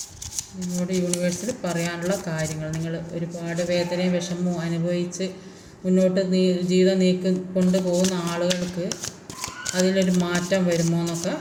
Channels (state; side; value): identical; both; correlation 1.00